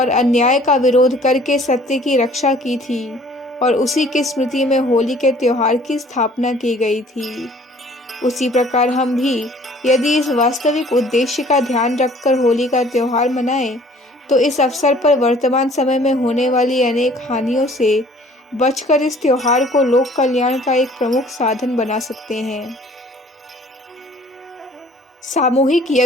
अन्याय का विरोध करके सत्य की रक्षा की थी और उसी की स्मृति में होली के त्योहार की स्थापना की गई थी, उसी प्रकार हम भी यदि इस वास्तविक उद्देश्य का ध्यान रखकर होली का त्योहार मनाएं, तो इस अवसर पर वर्तमान समय में होने वाली अनेक हानियों से बचकर इस त्योहार को लोक कल्याण का एक प्रमुख साधन बना सकते हैं। सामूहिक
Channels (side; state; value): both; normal; correlation 0.54